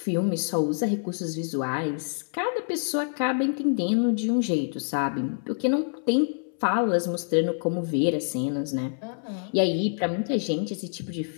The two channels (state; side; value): silent; right; 60 dB below the other